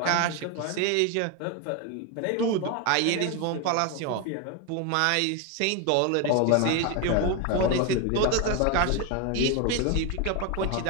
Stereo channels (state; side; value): different; both; correlation 0.02